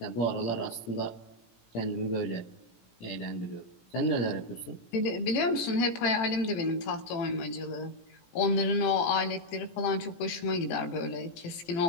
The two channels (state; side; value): late; right; 17 ms